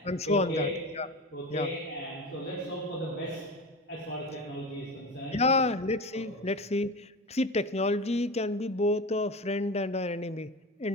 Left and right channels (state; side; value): normal; both; correlation 0.28